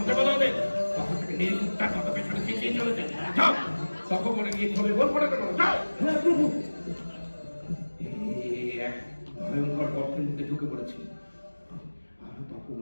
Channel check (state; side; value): inverted; both; correlation -1.00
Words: বলো ওদের। তখন থেকে নির্বুদ্ধার মতো পেছনে চেঁচিয়ে চলেছে। যাও, তখন মনে গিয়ে ধরে বল পড়ে দেবো। যাও। হ্যাঁ প্রভু। এক ভয়ঙ্কর গর্তের মধ্যে ঢুকে পড়েছি।